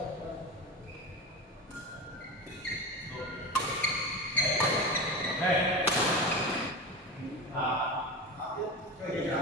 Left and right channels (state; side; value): normal; both; correlation 0.24